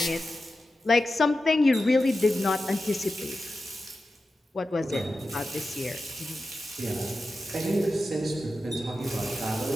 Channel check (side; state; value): both; normal; correlation 0.92